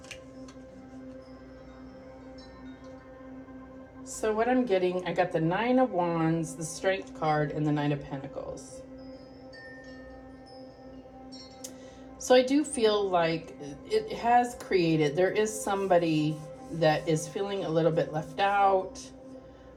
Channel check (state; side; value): identical; both; correlation 1.00